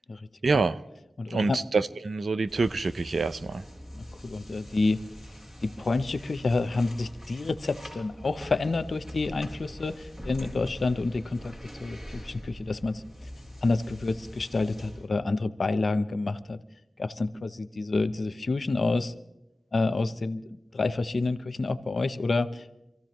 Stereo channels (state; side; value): normal; both; correlation 0.93